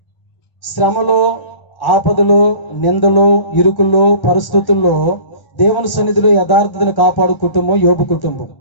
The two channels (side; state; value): right; late; 1.1 ms